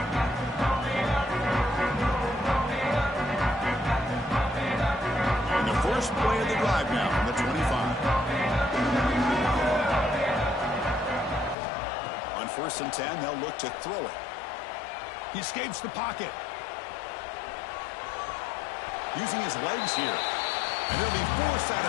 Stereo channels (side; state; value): right; drops out; at 11.6 s